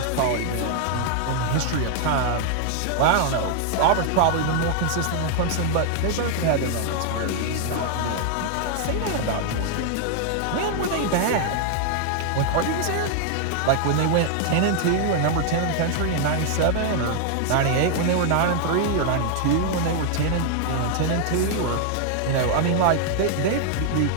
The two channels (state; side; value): different; both; correlation -0.01